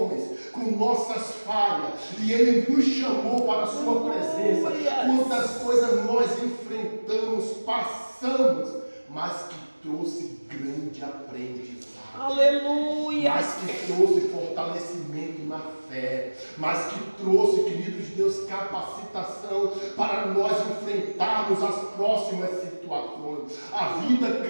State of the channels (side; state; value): both; inverted; correlation -1.00